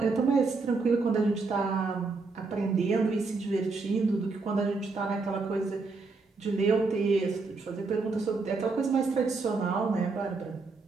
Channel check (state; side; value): quieter; left; 4.0 dB